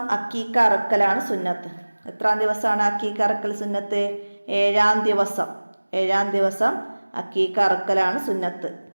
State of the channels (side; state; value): both; inverted; correlation -1.00